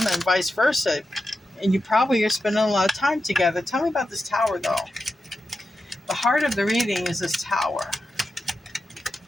and vice versa. And you probably are spending a lot of time together. Tell me about this Tower, though. The heart of the reading is this Tower.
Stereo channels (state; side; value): normal; both; correlation 0.90